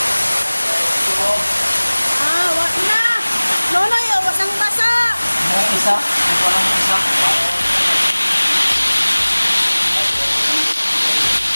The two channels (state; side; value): inverted; both; correlation -1.00